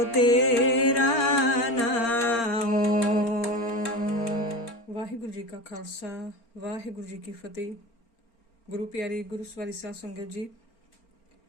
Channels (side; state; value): right; late; 4.4 ms